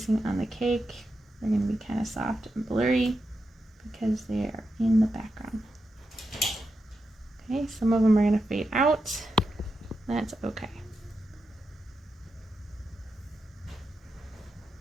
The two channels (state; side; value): normal; both; correlation 0.87